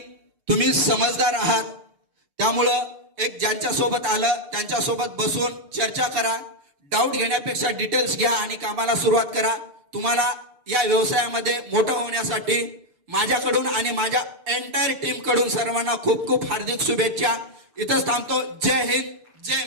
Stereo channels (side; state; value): left; late; 6.8 ms